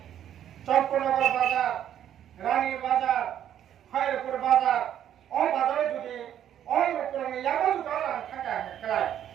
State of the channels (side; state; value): left; quieter; 10.4 dB